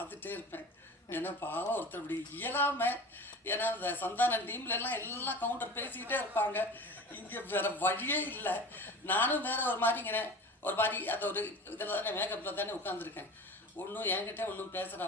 இருப்பேன். ஏன்னா பாவம் ஒருத்தர் இப்படி இயலாமல், ஏன்னா அந்த சந்தான டீம்லெல்லாம் எல்லாம் கவுண்டர் பேசிக்கிட்டே இருப்பாங்க. இங்கே வேறு வழியே இல்லை. நானும் வேறு ஒரு மாதிரி அந்த ஒரு இதில் தானே மேக்கப்பில் தானே உட்காந்துருக்கேன். ஒன்றும் என்கிட்ட ஒன்றும்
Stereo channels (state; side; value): normal; both; correlation 0.36